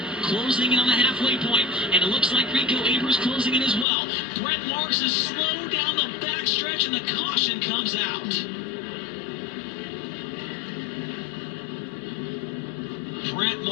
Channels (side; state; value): right; drops out; at 3.9 s